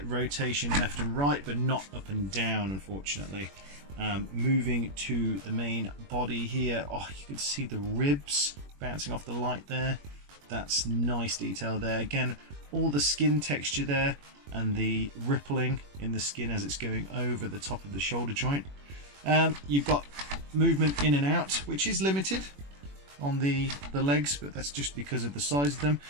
rotation left and right, but not up and down, unfortunately. Moving to the main body here, oh, you can see the ribs bouncing off the light there. That's nice detail there. Again, all the skin texture there and the rippling in the skin as it's going over the top of the shoulder joint. You've got movement in and out, which is limited on the legs, but that's just because of the size of them.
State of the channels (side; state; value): left; late; 21 ms